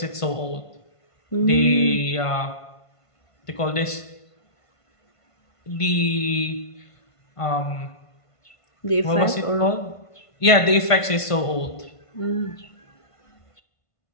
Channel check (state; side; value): late; right; 1.5 ms